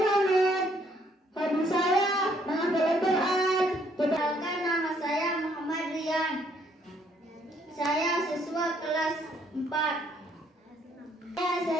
Hobi saya menghafal Al-Quran. Perkenalkan, nama saya Muhammad Rian. Saya siswa kelas 4. Saya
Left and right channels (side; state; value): both; normal; correlation 0.67